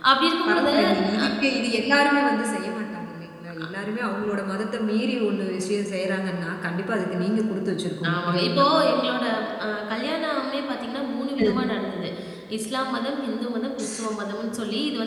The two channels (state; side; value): identical; both; correlation 1.00